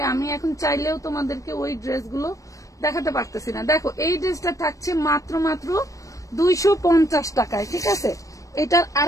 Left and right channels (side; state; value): right; late; 0.16 ms